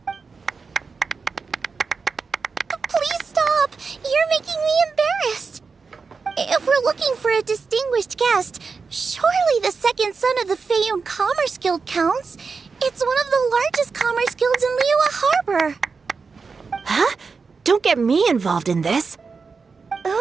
Please stop! You're making me embarrassed. If we're looking for a distinguished guest, surely the second son of the Feiyun Commerce Guild counts. It's one of the largest commerce guilds in Liyue Harbor. Huh? Don't get me involved in this.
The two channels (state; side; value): quieter; left; 4.9 dB